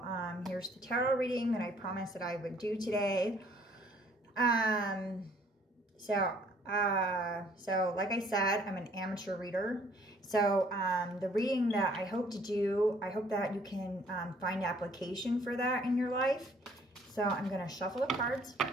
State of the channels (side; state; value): both; normal; correlation 0.60